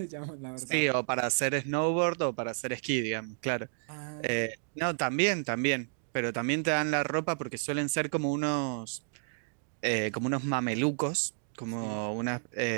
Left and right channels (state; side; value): silent; left; digital silence